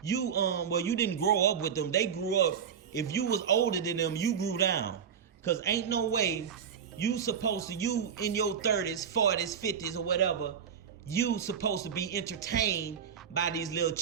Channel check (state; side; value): quieter; left; 7.6 dB